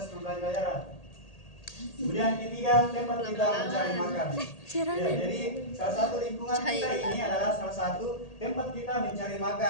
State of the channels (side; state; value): right; late; 1.8 ms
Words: pembelajaran. Kemudian yang ketiga, tempat kita mencari makan. Ya, jadi salah satu lingkungan kita ini adalah salah satu tempat kita mencari